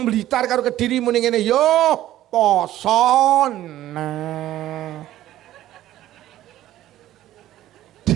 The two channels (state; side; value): quieter; left; 13.8 dB